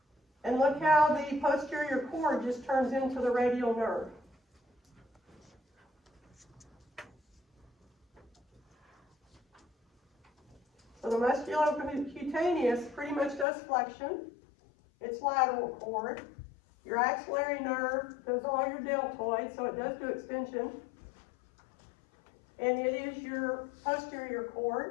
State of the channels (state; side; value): drops out; right; at 13.5 s